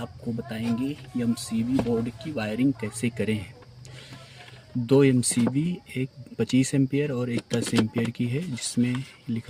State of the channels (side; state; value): both; identical; correlation 1.00